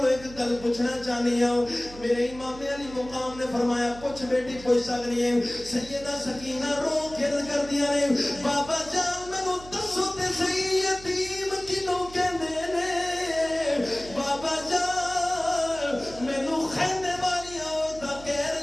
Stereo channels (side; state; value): right; noise; hum, 17 dB below the sound